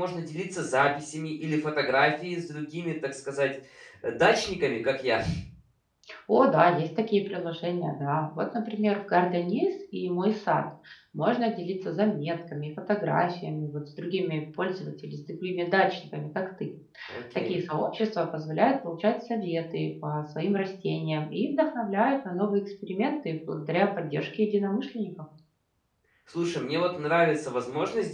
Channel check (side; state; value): both; identical; correlation 1.00